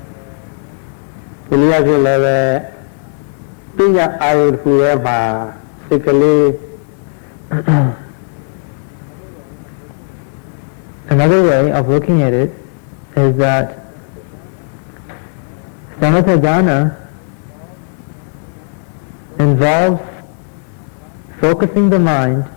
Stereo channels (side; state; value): right; silent; 56 dB below the other